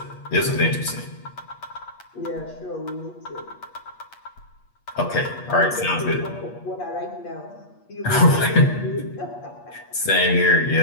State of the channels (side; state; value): right; late; 8.4 ms